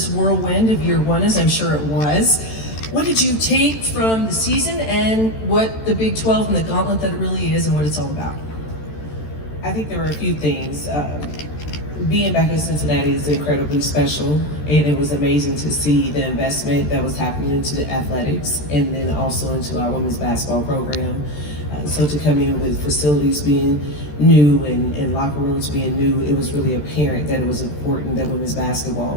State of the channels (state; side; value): late; right; 13 ms